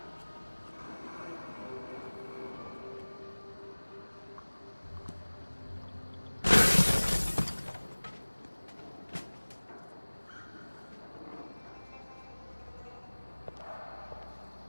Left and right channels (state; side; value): inverted; both; correlation -1.00